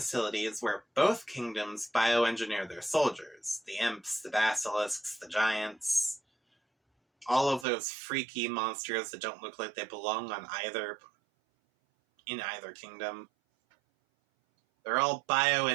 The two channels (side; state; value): left; drops out; at 7.7 s